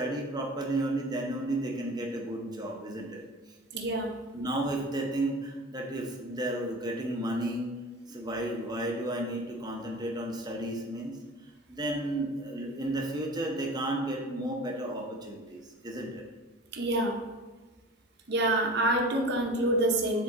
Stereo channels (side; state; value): both; normal; correlation 0.38